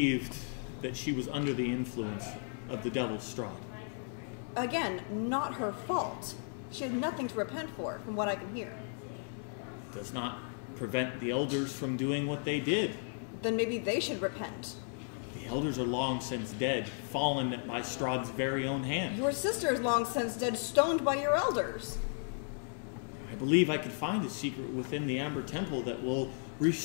that she was under the influence of the Devil's Strahd. Again, not her fault. She had nothing to repent for, from what I can hear. Does not prevent the elders from doing what they did. Then maybe they should repent. The elders are long since dead, fallen by Strahd's very own hand. Your sister is long since dead, stoned by your elders. I believe I could find a secret within the Amber Temple that will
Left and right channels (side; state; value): right; silent; 55 dB below the other